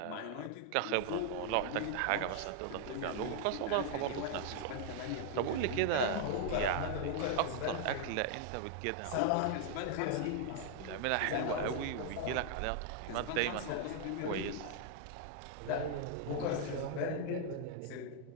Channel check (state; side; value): different; both; correlation 0.00